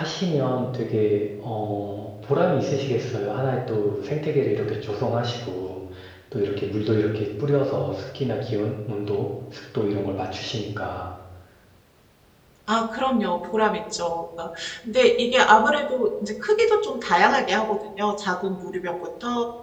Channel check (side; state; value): both; identical; correlation 1.00